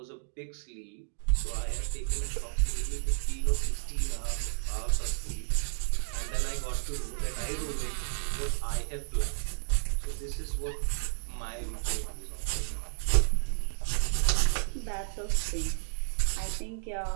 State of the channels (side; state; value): left; silent; digital silence